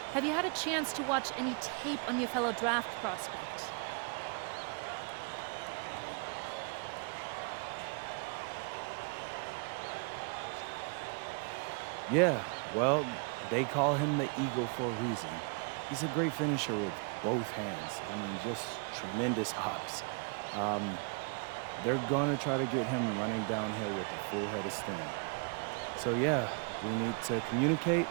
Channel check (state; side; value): quieter; left; 37.9 dB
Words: Have you had a chance to watch any tape on your fellow draft prospect? Yeah, well, they call him the Eagle for a reason. He's a great finisher with both hands. I mean, just tremendous hops. They're going to try to get him running downhill with a full head of steam. So, yeah, we need to communicate,